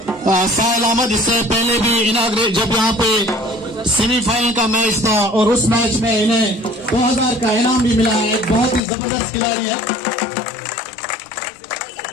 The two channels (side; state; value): right; drops out; at 8.8 s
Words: साहिल अहमद इससे पहले भी इनाग्रेट जब यहाँ पे सेमीफाइनल का मैच था और उस मैच में इन्हें 2000 का इनाम भी मिला है। एक बहुत ही जबरदस्त खिलाड़ी है।